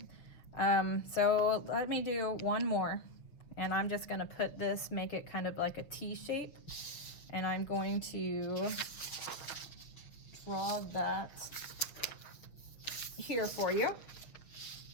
so let me do one more, and I'm just going to put this, make it kind of like a T shape, and I'm going to draw that here for you,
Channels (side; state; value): right; late; 6.6 ms